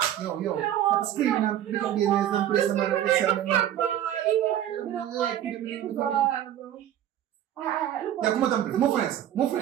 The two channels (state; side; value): quieter; left; 11.5 dB